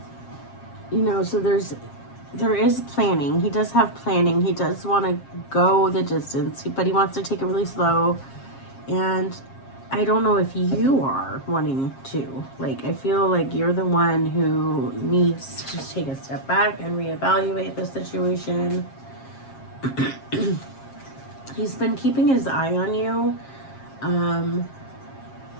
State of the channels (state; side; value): late; right; 7.5 ms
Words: You know, so there is planning. He does have planning. He does want to go the distance, but he wants to take it really slow. And I don't know if you are wanting to. Like, I feel like you're the one who needs to take a step back and reevaluate the situation. He's been keeping his eye on you.